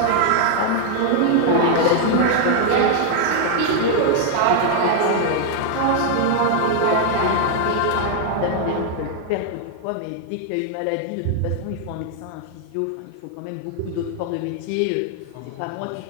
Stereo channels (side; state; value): both; different; correlation 0.00